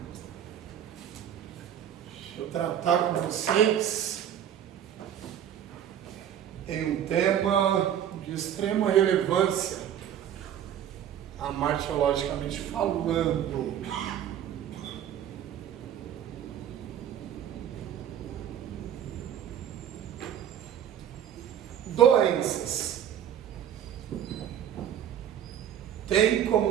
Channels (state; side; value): quieter; left; 9.9 dB